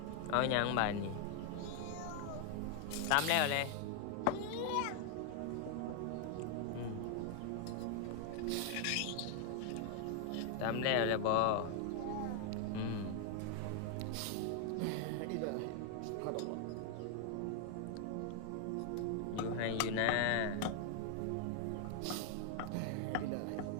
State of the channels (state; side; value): different; both; correlation 0.00